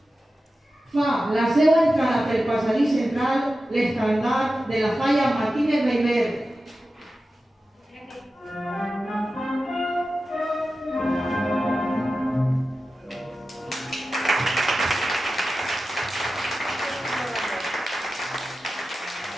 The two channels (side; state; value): both; normal; correlation 0.93